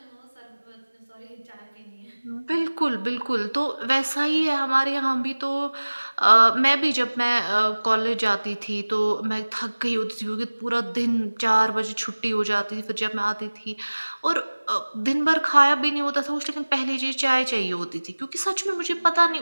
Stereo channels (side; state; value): both; inverted; correlation -1.00